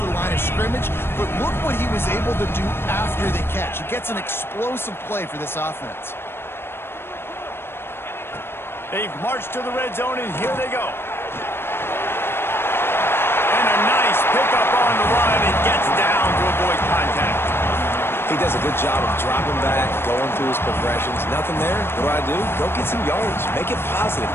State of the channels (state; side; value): late; right; 0.11 ms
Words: the line of scrimmage, but look what he was able to do after the catch. He gets an explosive play for this offense. They've marched to the red zone, and here they go. And a nice pickup on the run, and gets down to avoid contact. He does a good job of dropping back, going through his progressions. Nothing there. What do? Go get some yards. Make it positive.